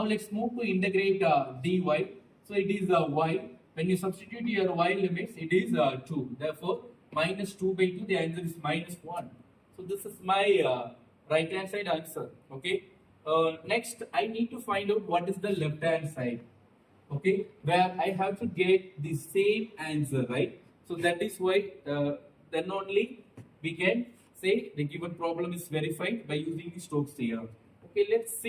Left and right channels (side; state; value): both; identical; correlation 1.00